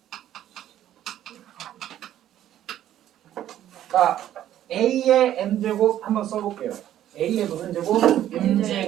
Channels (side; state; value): left; quieter; 11.9 dB